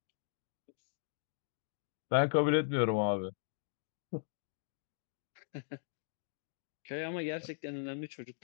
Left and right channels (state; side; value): silent; right; digital silence